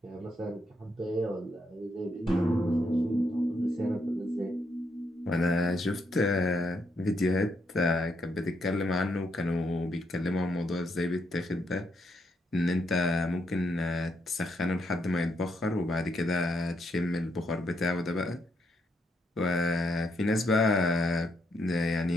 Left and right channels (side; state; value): both; normal; correlation 0.77